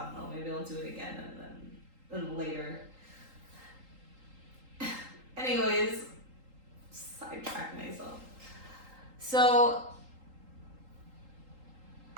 don't know, maybe I'll do it again and then later. Anyways, sidetrack myself. So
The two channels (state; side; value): late; left; 3.8 ms